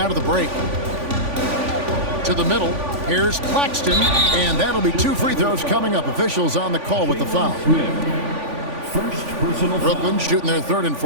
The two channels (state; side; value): late; left; 3.5 ms